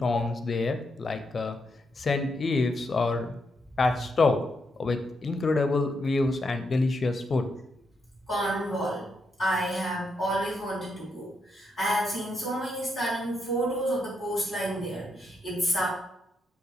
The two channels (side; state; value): both; normal; correlation 0.81